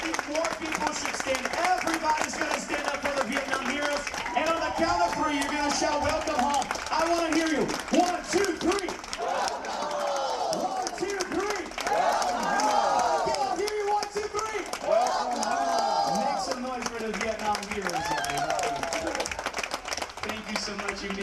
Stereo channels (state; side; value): identical; both; correlation 1.00